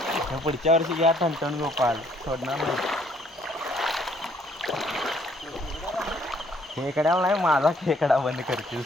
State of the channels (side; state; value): both; normal; correlation 0.64